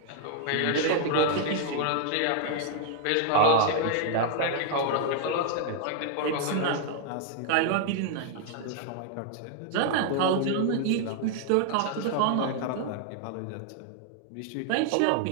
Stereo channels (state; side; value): different; both; correlation -0.01